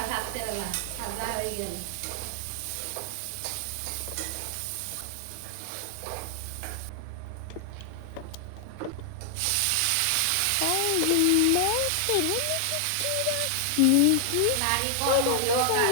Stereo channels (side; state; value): both; different; correlation 0.00